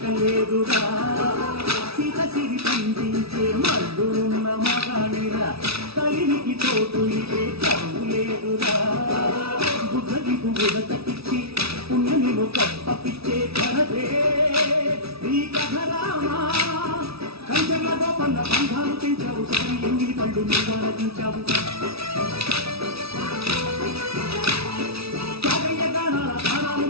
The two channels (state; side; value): late; left; 0.77 ms